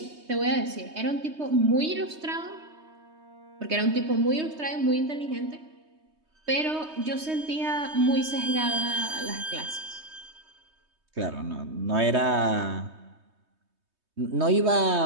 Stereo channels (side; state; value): left; late; 3.2 ms